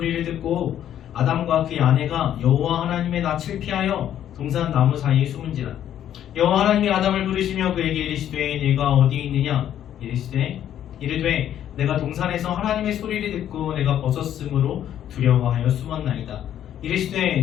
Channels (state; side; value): quieter; right; 10.7 dB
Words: 듣고 아담과 그의 아내가 여호와 하나님의 낯을 피하여 동산 나무 사이에 숨은지라. 여호와 하나님이 아담을 부르시며 그에게 이르시되 네가 어디 있느냐 이르되 내가 동산에서 하나님의 소리를 듣고 내가 벗었으므로 두려워하여 숨었나이다.